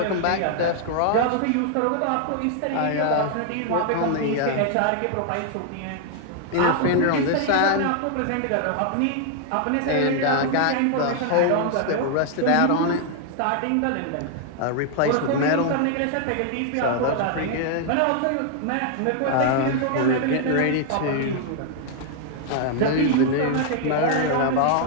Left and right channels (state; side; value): different; both; correlation 0.00